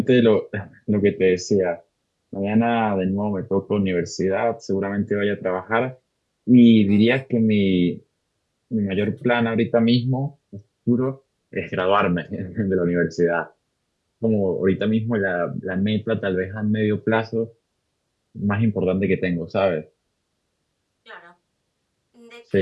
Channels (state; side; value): identical; both; correlation 1.00